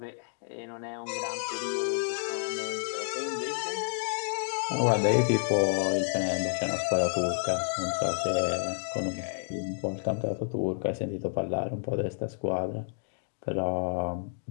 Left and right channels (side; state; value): right; silent; digital silence